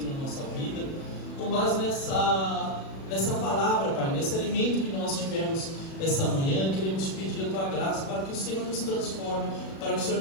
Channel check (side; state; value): right; late; 37 ms